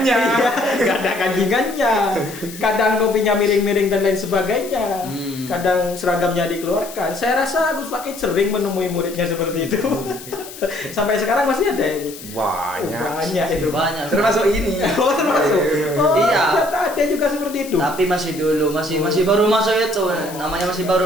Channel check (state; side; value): noise; left; hiss, 15 dB below the sound